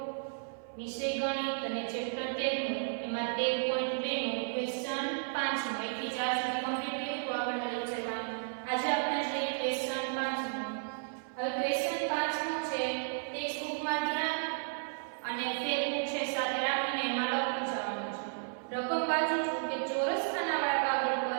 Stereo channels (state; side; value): silent; left; 55 dB below the other